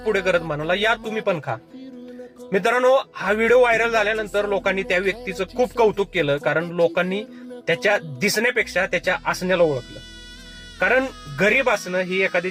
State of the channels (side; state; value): both; identical; correlation 1.00